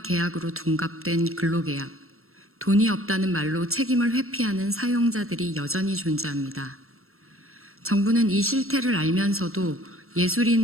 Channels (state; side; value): late; left; 0.62 ms